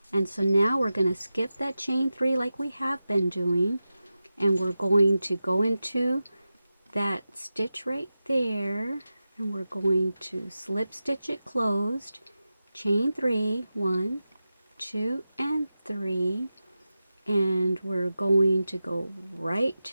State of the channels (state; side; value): inverted; both; correlation -0.93